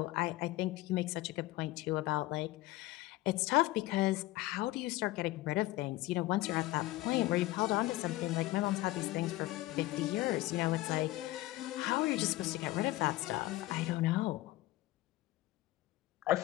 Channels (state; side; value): quieter; right; 18.0 dB